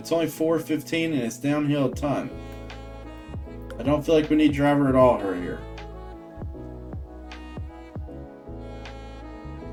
only 4:15 and it's downhill a ton. I don't feel like we need driver at all here.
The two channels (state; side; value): identical; both; correlation 1.00